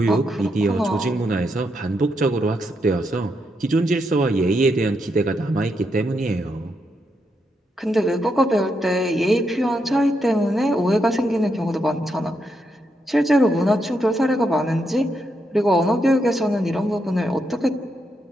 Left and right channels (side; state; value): both; normal; correlation 0.81